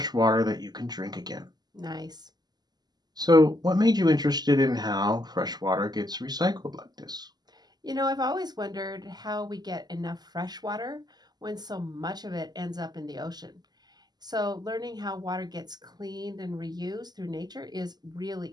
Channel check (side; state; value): left; late; 0.20 ms